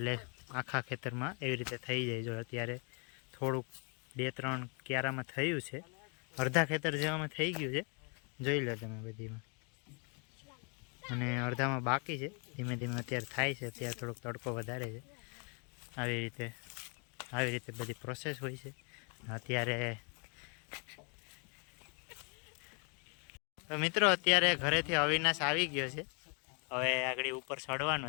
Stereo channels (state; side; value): quieter; right; 36.7 dB